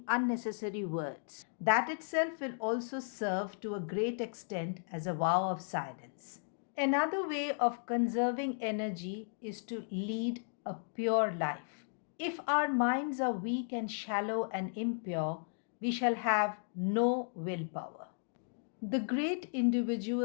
unnecessary words. That itself will also serve to a great extent as a vow of silence. Another way of conserving energy is to lead a pure life. If our minds are weak and shallow and impure, we shall have no willpower. The great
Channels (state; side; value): silent; right; digital silence